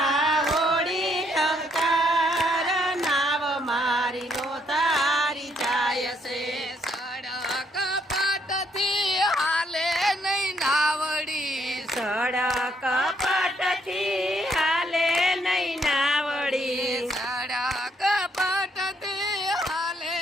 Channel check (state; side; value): normal; both; correlation 0.71